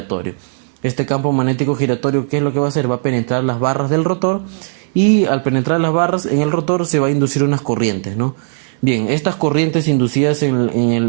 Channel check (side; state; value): left; silent; digital silence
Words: Este campo magnético giratorio, ¿qué es lo que va a hacer? Va a penetrar las barras del rotor, y al penetrar las barras en el rotor se va a inducir unas corrientes, ¿no? Bien, estas corrientes inducidas en